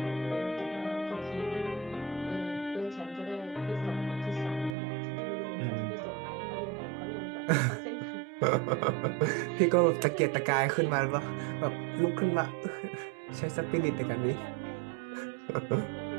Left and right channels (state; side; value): drops out; left; at 4.8 s